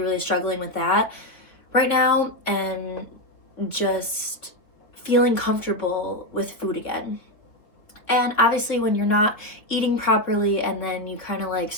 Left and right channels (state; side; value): late; right; 3.4 ms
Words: struggling with that right now, and just feeling comfortable with food again. And obviously when you're not eating properly and then you kind of